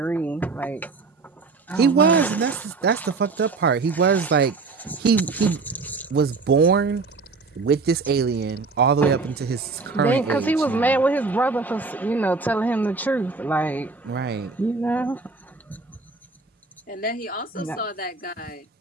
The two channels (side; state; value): left; quieter; 4.2 dB